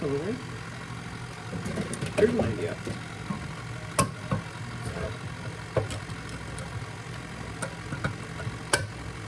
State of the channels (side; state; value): both; identical; correlation 1.00